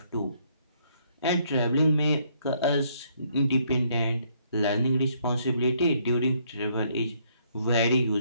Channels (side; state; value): both; inverted; correlation -0.69